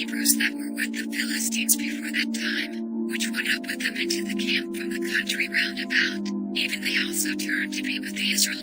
that were with the Philistines before that time, which went up with them into the camp from the country round about, even they also turned to be with the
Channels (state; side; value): identical; both; correlation 1.00